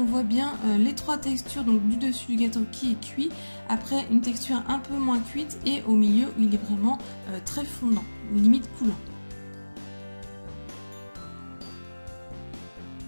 voit bien les trois textures donc du dessus du gâteau qui est cuit. Après, une texture un peu moins cuite et au milieu, où il est vraiment très fondant, limite coulant.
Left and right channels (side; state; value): both; inverted; correlation -1.00